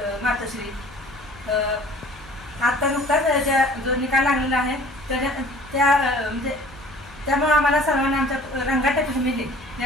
मातोश्री। आता नुकताच जो निकाल लागलेला आहे त्यामुळे आम्हाला सर्वांना आमच्या रंगाटे फॅमिली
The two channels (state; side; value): noise; left; hum, 22 dB below the sound